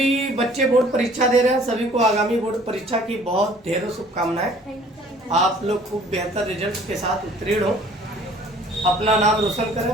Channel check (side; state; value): both; normal; correlation 0.54